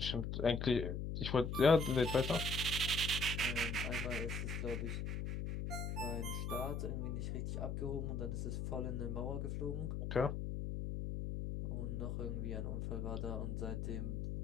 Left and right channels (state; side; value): noise; left; hum, 2 dB below the sound